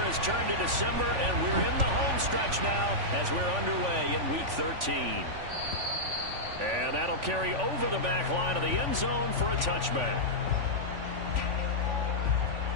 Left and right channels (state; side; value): late; left; 3.5 ms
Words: turned to December, and we're in the home stretch now as we're underway in Week 13. And that'll carry over the back line of the end zone for a touchback.